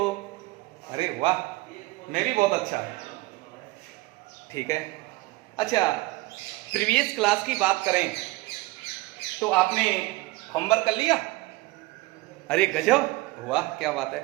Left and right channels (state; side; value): quieter; left; 21.1 dB